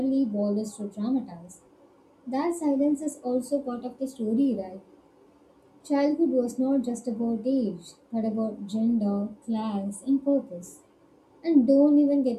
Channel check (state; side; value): identical; both; correlation 1.00